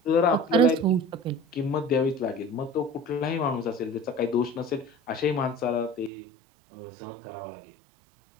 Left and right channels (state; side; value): drops out; left; at 6.1 s